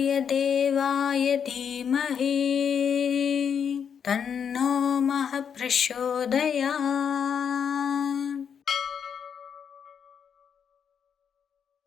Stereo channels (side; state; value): right; quieter; 7.4 dB